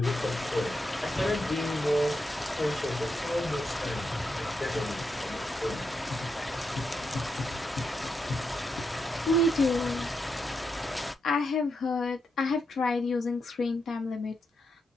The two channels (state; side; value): normal; both; correlation 0.84